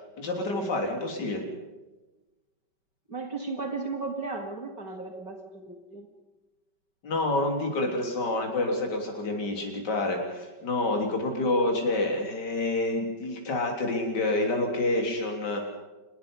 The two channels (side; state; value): right; late; 5.2 ms